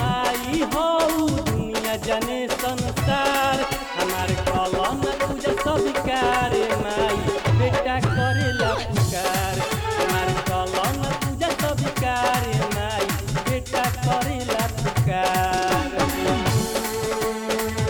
हो दुनिया जने संसार। हमारे कलम पूजा स्वीकार माई बेटा करेला पुकार, हमारे कलम पूजा स्वीकार माई बेटा करेला पुकार।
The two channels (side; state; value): both; identical; correlation 1.00